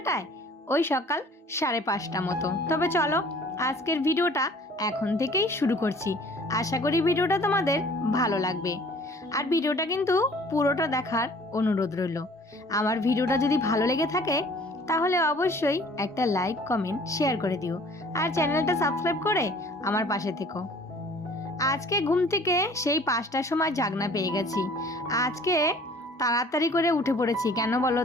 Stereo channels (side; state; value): both; normal; correlation 0.52